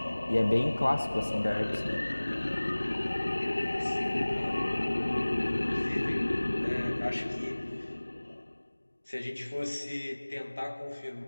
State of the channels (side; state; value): both; inverted; correlation -1.00